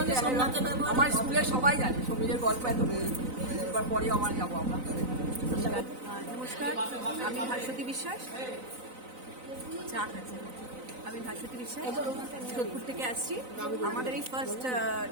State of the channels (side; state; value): left; late; 3.9 ms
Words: আমার স্কুলের সবাই জানে সমীরের গল্প এত এবার পরেও আমার যাবো আমরা। নমস্কার, আমি ভাস্বতী বিশ্বাস। আমি ভাস্বতী বিশ্বাস, যোধপুর থেকে আসছি। আমাদের এই ফার্স্ট